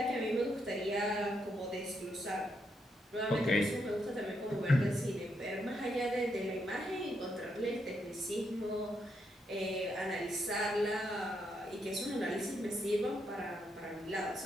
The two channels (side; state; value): both; normal; correlation 0.79